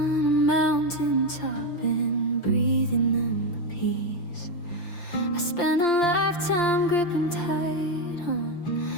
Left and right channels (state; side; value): late; right; 5.8 ms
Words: a mountain top and breathing in the peace. I spent a lifetime gripping tight